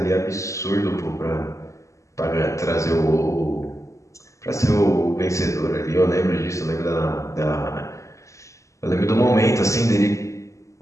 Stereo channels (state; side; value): late; right; 0.15 ms